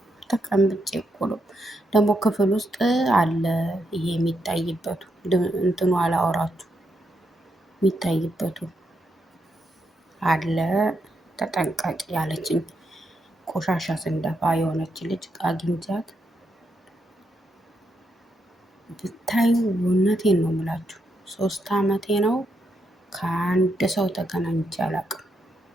ተቀምጬ እኮ ነው። ደግሞ ክፍል ውስጥ አለ ይሄ የሚታይበቱ እንትኑ አላወራችሁ የሚታይበቱ አለ። ተጠንቀቂ ያለችኝ ቆሻሻ ስንደፋ የሆነች ልጅ አግኝቻት ብታዩ እውነቴን ነው የምላችሁ 3 ዓመቴ ነው ከአንድ ሰው ተገናኝቼ አላውቅም።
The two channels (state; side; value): normal; both; correlation 0.81